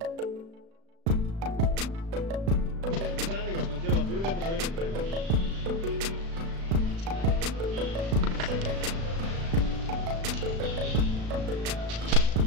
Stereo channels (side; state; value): left; late; 36 ms